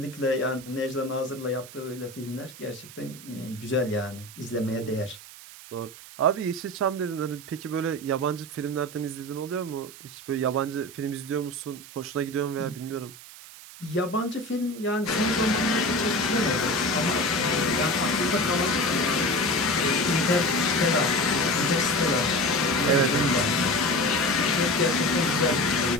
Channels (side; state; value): right; noise; hiss, 17 dB below the sound